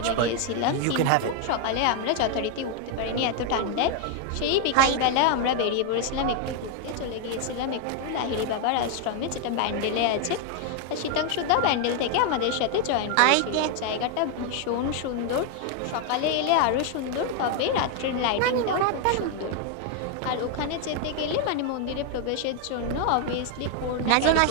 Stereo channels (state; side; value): different; both; correlation 0.00